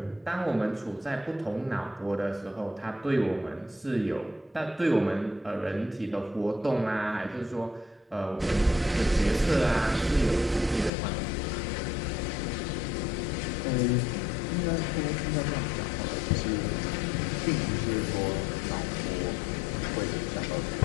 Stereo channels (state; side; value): drops out; right; at 10.9 s